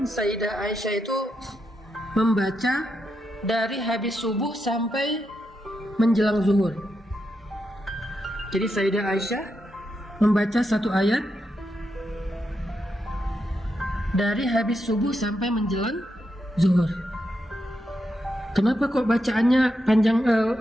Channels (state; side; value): normal; both; correlation 0.84